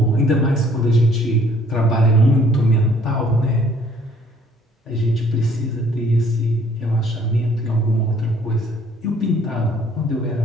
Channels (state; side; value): normal; both; correlation 0.60